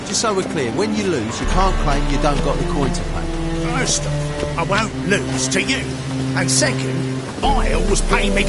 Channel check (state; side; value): identical; both; correlation 1.00